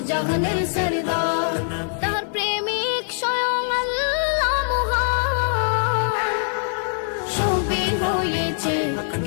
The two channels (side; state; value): right; silent; 57 dB below the other